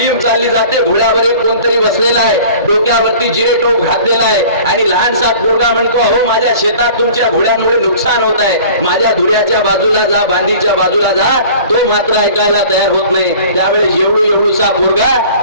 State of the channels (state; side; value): inverted; both; correlation -0.45